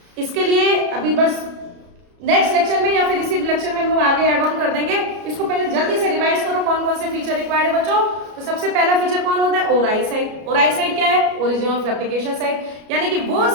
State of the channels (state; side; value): late; left; 33 ms